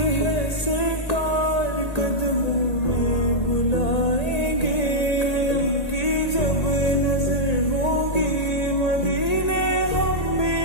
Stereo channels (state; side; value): late; right; 1.8 ms